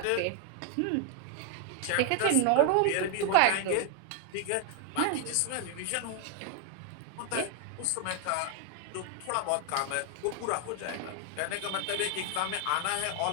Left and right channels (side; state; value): both; different; correlation 0.00